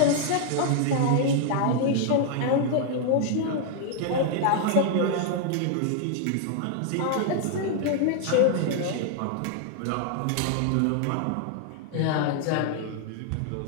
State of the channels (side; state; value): both; different; correlation 0.00